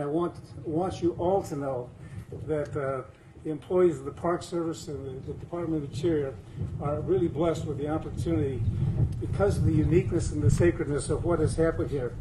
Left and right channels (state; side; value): identical; both; correlation 1.00